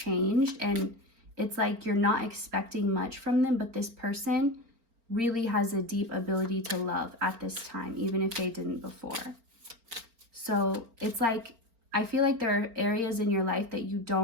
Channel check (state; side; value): late; left; 4.4 ms